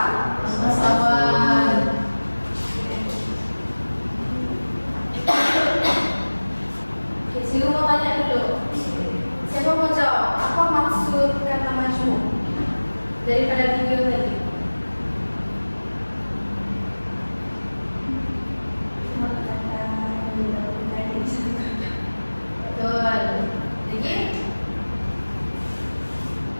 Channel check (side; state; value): both; inverted; correlation -1.00